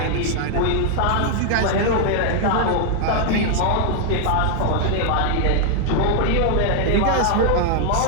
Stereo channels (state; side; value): different; both; correlation 0.00